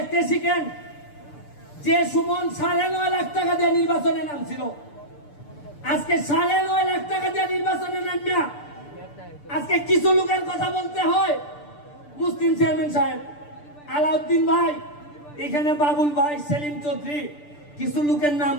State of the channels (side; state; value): right; late; 6.8 ms